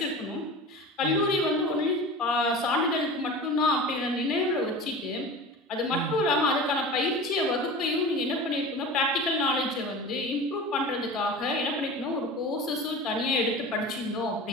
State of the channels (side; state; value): both; normal; correlation 0.34